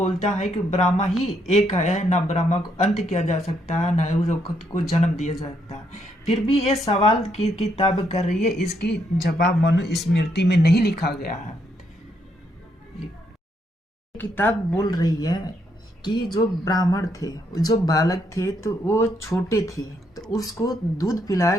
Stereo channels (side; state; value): both; normal; correlation 0.75